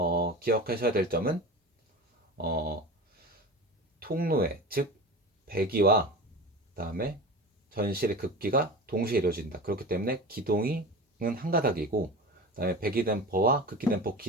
기억하셔야 될 점은 통로에, 즉 배기와 그다음에 전실의 극기가 동시에 이루어진다. 그렇기 때문에 기동은 한 가닥이고, 그다음에 배기 댐퍼와 극기 댐퍼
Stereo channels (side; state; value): both; normal; correlation 0.32